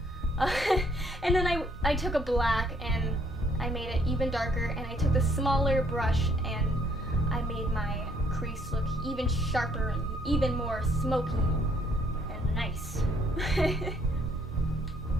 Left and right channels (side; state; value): both; normal; correlation 0.66